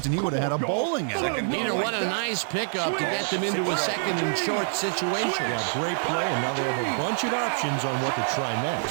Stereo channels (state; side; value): silent; left; digital silence